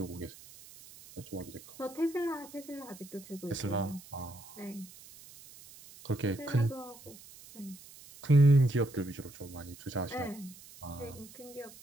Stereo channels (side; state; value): right; noise; hiss, 19 dB below the sound